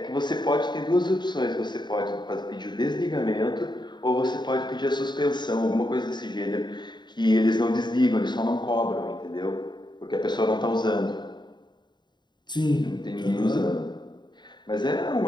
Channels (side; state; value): right; late; 0.21 ms